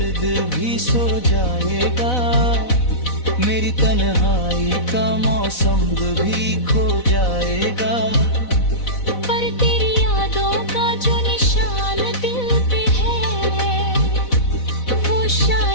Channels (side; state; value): right; late; 4.0 ms